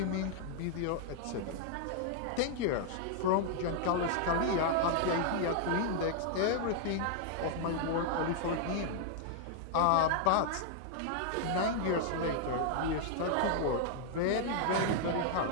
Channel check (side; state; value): both; different; correlation 0.00